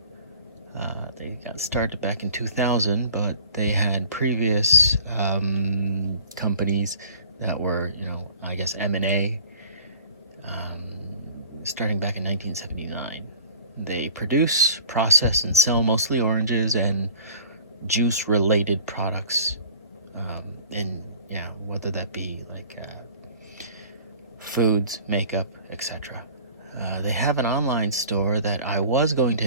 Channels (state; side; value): inverted; both; correlation -0.46